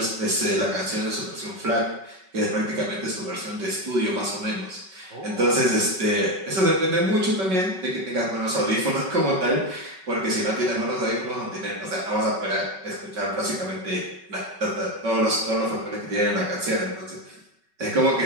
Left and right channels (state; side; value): late; left; 5.3 ms